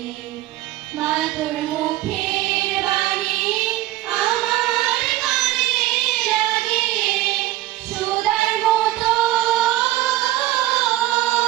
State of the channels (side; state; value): left; quieter; 15.7 dB